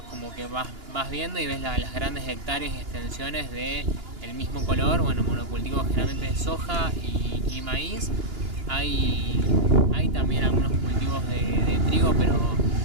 como que vas viendo y ves las grandes hectáreas y extensiones de el mismo color, bueno, monocultivos generalmente de soja y maíz. Hay también algunos cultivos de trigo, pero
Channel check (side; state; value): left; late; 2.9 ms